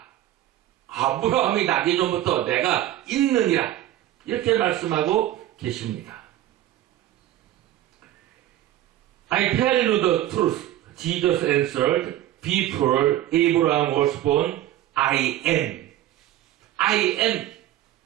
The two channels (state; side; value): quieter; left; 13.4 dB